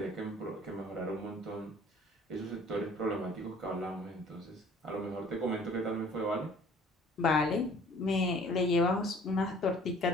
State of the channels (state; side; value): normal; both; correlation 0.53